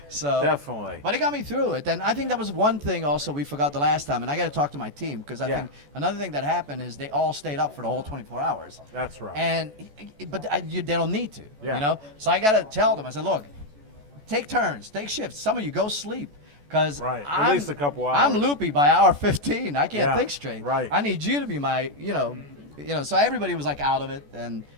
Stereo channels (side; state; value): left; late; 14 ms